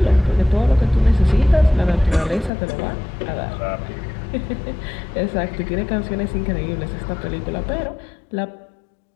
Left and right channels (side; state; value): right; drops out; at 2.5 s